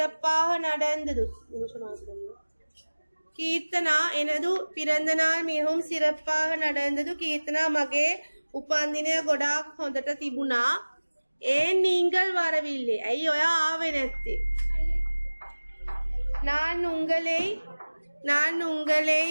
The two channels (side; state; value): both; inverted; correlation -1.00